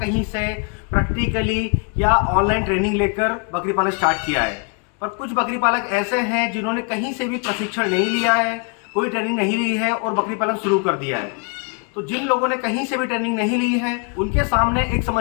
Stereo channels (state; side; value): quieter; right; 37.4 dB